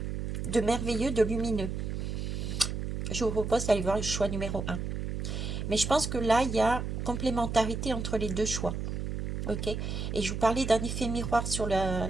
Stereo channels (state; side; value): noise; right; hum, 3 dB below the sound